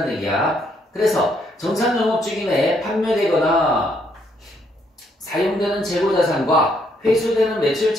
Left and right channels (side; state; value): both; normal; correlation 0.72